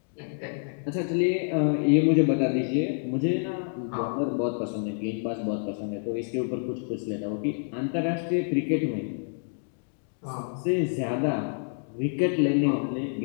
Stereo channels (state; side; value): silent; right; digital silence